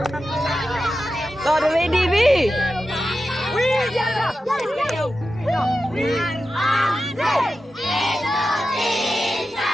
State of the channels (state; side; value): normal; both; correlation 0.91